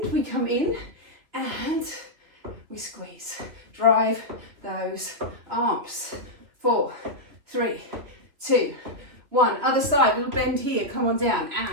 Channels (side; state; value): left; late; 3.2 ms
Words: we come in, and we squeeze. Drive those arms. 4, 3, 2, 1. Other side, little bend here, come on down,